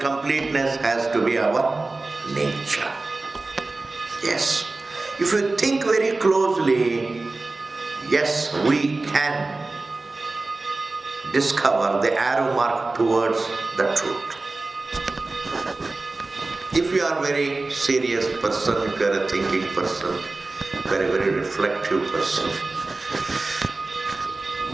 has to be our nature. Yes. If you think very closely, yes, we can discover the arrow mark towards the truth. If you are a very serious person, if you are a thinking person, very, very reflective person,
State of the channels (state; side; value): quieter; left; 3.3 dB